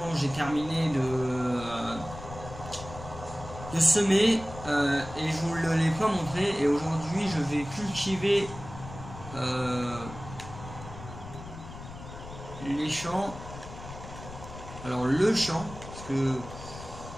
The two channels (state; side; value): noise; left; rumble, 13 dB below the sound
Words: j'ai terminé de semer et je vous ne l'ai pas montré. Et aujourd'hui, je vais cultiver les champs. Alors le champ, parce que